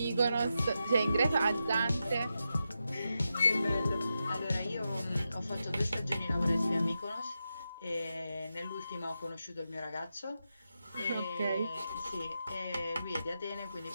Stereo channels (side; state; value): both; inverted; correlation -0.88